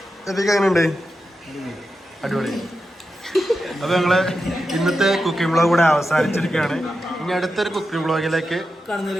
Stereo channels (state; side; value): normal; both; correlation 0.89